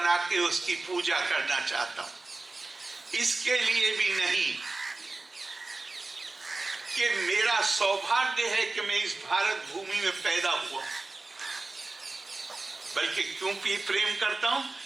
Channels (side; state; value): left; quieter; 3.3 dB